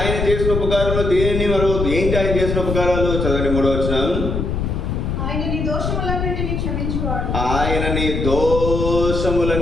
చేసిన ఉపకారంలో? దేనిని మరవద్దు. ఏంటి ఆయన చేసిన ఉపకారాలు? చదవండి 3వ వచనం. ఆయన నీ దోషములన్నిటినీ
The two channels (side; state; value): left; noise; rumble, 2 dB below the sound